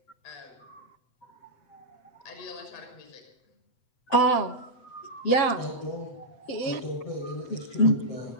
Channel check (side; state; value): right; late; 8.0 ms